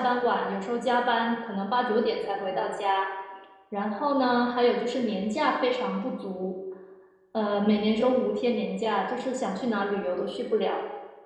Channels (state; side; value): identical; both; correlation 1.00